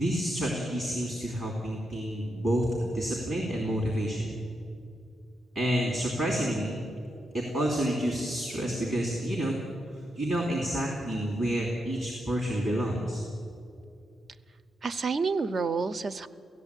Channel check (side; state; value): both; normal; correlation 0.83